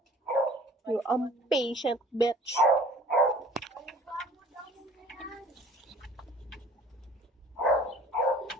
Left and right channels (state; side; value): normal; both; correlation 0.50